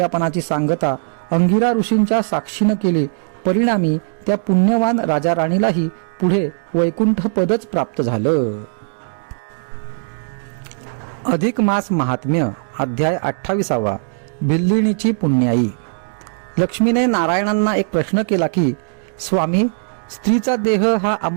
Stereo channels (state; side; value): silent; left; digital silence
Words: सांगता अंगिरा ऋषींच्या साक्षीनं केली. परिणामी त्या पुण्यवान राजा राणीलाही पुढे वैकुंठ पदच प्राप्त झालं. अधिक मास महात्म्य, अध्याय 28. भिल्लिणीची पुण्याई. लक्ष्मीने नारायणांना एक प्रश्न केला की, स्वामी, स्त्रीचा देह हा